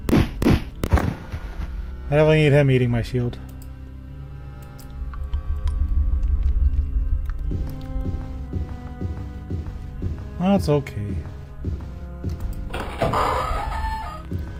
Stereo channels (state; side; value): identical; both; correlation 1.00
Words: I definitely need him eating my shield. That's okay.